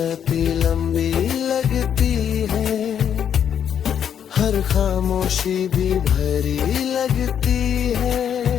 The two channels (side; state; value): right; quieter; 8.7 dB